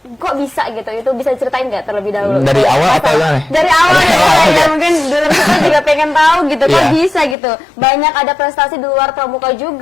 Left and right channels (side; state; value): right; drops out; at 7.4 s